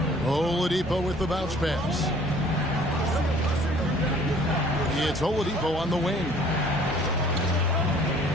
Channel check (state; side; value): normal; both; correlation 0.54